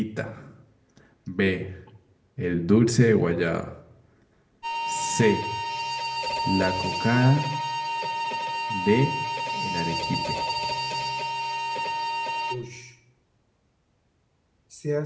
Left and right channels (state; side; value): identical; both; correlation 1.00